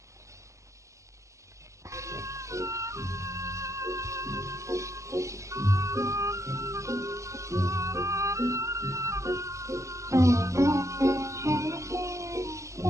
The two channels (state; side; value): late; left; 0.15 ms